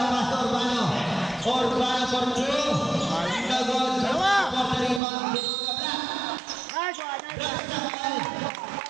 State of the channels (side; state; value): left; drops out; at 5.0 s